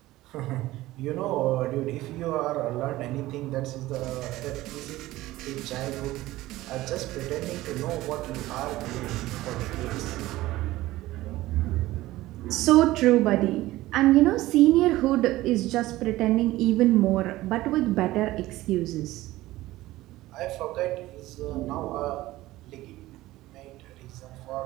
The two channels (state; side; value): quieter; left; 17.1 dB